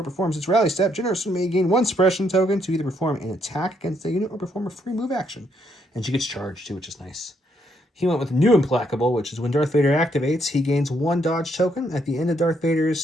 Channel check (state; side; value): normal; both; correlation 0.73